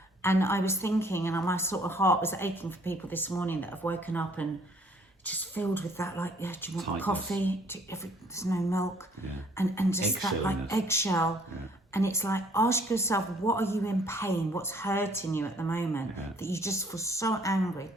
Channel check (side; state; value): both; normal; correlation 0.61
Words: And I was thinking, and my sort of heart was aching for people this morning that have woken up and just filled with that, do you want tightness. Coffee? There's no milk. Yeah. And just that, eggshell. Yeah. And it's like, ask yourself, what are you in pain? What's hurting you at the moment? Yeah. That you just feel so angry?